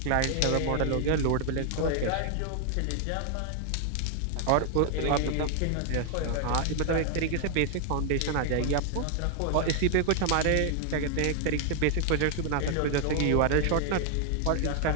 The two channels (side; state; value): both; different; correlation 0.00